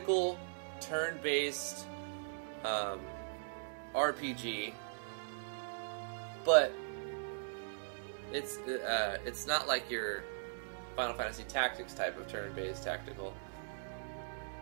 turn-based RPG, but it's not like your Final Fantasy Tactics type of turn-based tactical.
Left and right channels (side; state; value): left; silent; 51 dB below the other